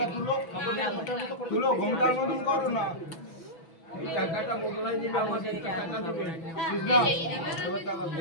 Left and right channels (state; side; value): late; right; 6.1 ms